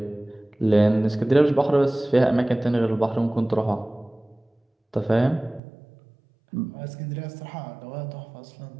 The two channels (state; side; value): drops out; left; at 5.6 s